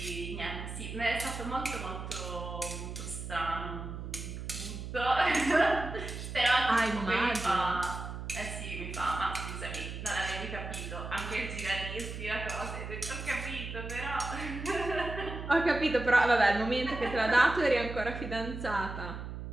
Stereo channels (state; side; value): noise; right; hum, 8 dB below the sound